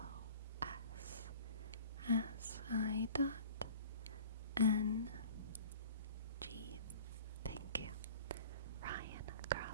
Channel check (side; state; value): both; inverted; correlation -0.44